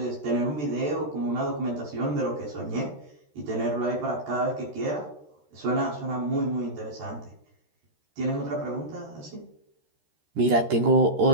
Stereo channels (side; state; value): left; late; 13 ms